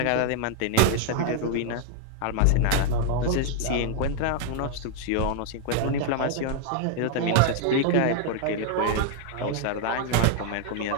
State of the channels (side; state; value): both; different; correlation 0.00